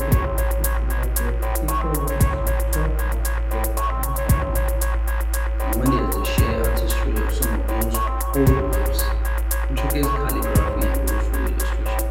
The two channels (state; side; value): identical; both; correlation 1.00